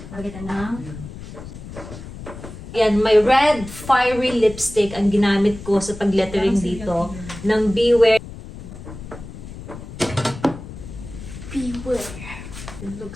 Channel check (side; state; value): left; noise; rumble, 13 dB below the sound